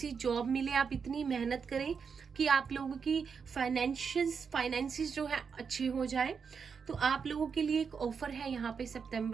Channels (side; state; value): left; quieter; 6.0 dB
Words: जॉब मिले, आप इतनी मेहनत करें कि आप लोगों की फाइनेंसिस जो है अच्छे हो जाए। तो आप लोगों के लिए एक ऑफर है यहाँ पे